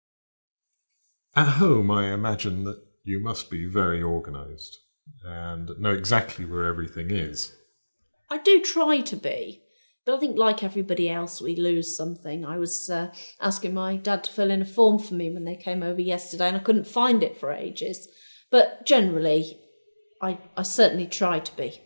At home, I imagine that you must be very organised and know exactly where everything is. I do try to be, but I think like everybody else, we lose something. I was asking my dad to fill in a form for me when they came over yesterday, and I couldn't find it for ages. But generally, I certainly try to be,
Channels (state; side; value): inverted; both; correlation -1.00